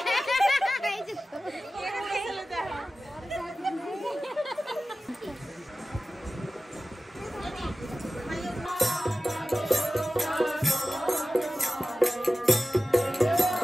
এই যে তো।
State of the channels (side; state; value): both; normal; correlation 0.96